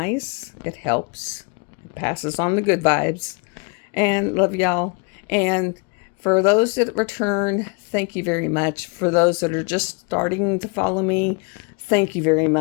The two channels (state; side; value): quieter; right; 33.7 dB